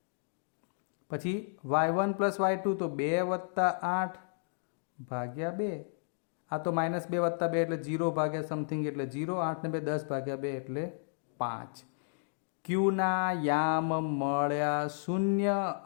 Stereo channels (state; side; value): silent; right; digital silence